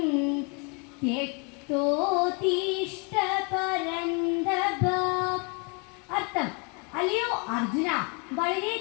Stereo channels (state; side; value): quieter; right; 33.7 dB